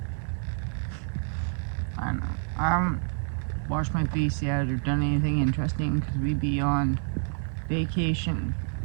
I know. I haven't washed my face yet or done anything interesting because we be on vacation.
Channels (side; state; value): left; silent; 59 dB below the other